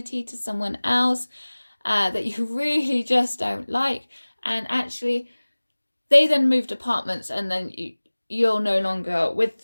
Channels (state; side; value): inverted; both; correlation -1.00